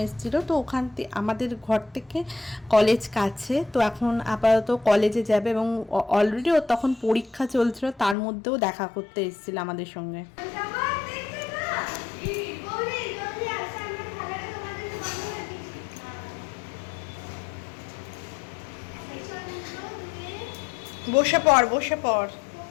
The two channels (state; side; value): drops out; right; at 8.2 s